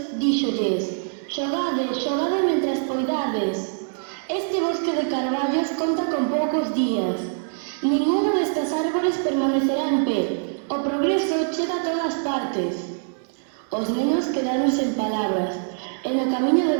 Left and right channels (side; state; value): left; silent; digital silence